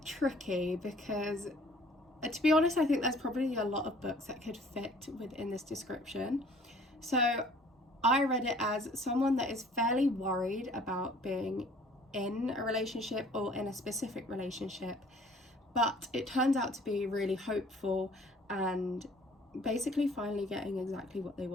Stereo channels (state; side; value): normal; both; correlation 0.54